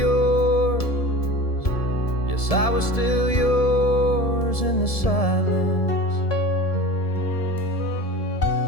yes, I was still yours in the silence.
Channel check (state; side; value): late; right; 1.7 ms